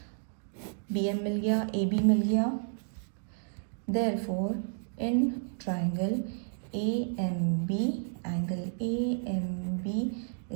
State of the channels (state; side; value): silent; left; digital silence